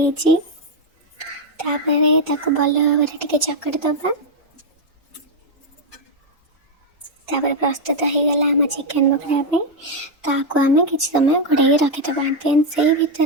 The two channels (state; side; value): normal; both; correlation 0.01